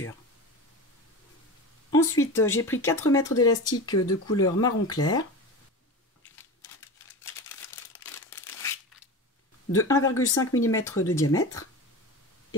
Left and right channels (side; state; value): both; normal; correlation 0.28